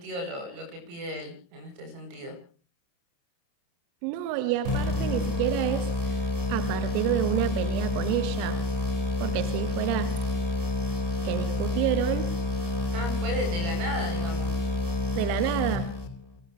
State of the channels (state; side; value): late; left; 29 ms